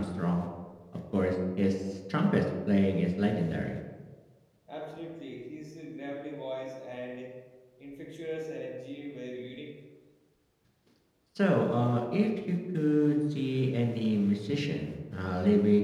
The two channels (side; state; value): both; identical; correlation 1.00